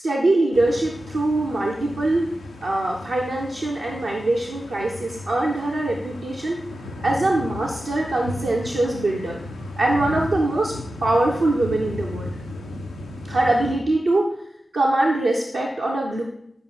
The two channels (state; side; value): normal; both; correlation 0.93